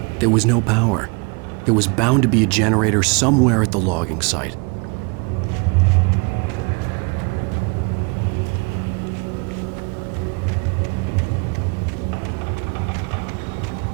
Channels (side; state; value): left; quieter; 31.8 dB